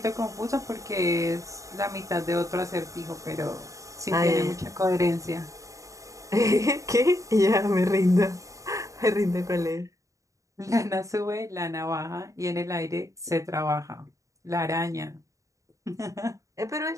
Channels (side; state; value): left; late; 0.16 ms